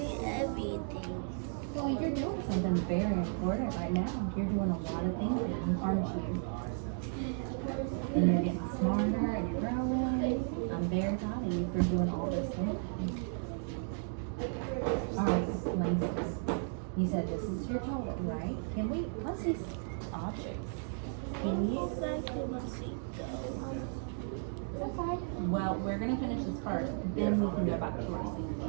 everything. Well, you're doing something very important right now. You're doing a lot of thinking, aren't you? And you're getting smarter and you're growing. I'm very proud of you for doing all this thinking. Alright, Langston. You said this is your total, right? Can we, let's see objects. Can you? Okay. Well, we're going to finish this first, then we can go back to our scene,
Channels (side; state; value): left; silent; 55 dB below the other